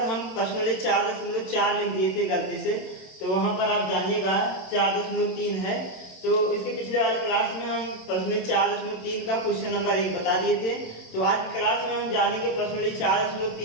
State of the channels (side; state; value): right; late; 27 ms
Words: हम प्रश्नावली 4.4 लिख दिए थे गलती से, तो वहां पर आप जानिएगा 4.3 है। तो इसके पिछले वाले क्लास में हम प्रश्न 4.3 का क्वेश्चन नंबर 1 बता दिए थे। तो आज की क्लास में हम जानेंगे प्रश्न